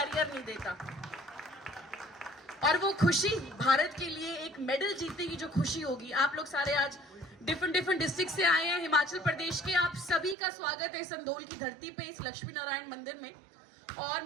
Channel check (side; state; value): left; drops out; at 10.4 s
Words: नहीं देता। और वो खुशी भारत के लिए एक मेडल जीतने की जो खुशी होगी, आप लोग सारे आज डिफरेंट डिस्ट्रिक्ट से आए हैं, हिमाचल प्रदेश के, आप सभी का स्वागत है संधोल की धरती पे इस लक्ष्मी नारायण मंदिर में। और